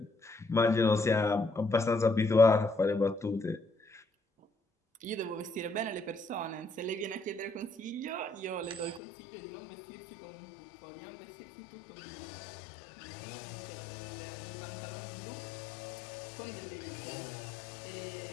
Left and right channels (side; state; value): right; drops out; at 9.0 s